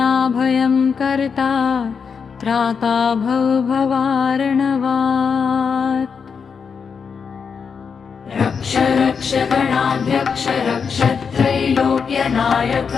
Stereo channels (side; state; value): right; quieter; 6.1 dB